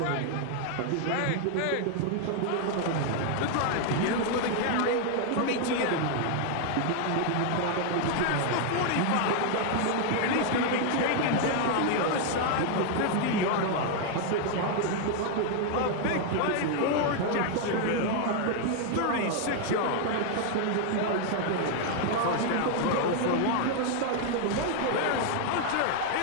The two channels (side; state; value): both; different; correlation 0.00